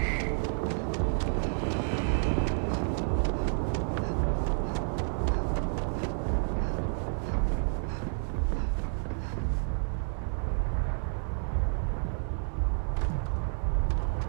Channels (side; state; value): left; silent; digital silence